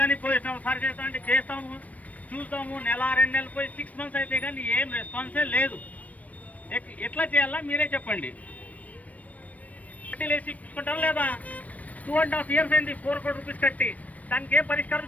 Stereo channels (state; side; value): late; right; 0.070 ms